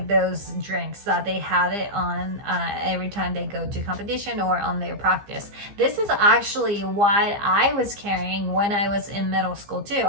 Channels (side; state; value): left; late; 15 ms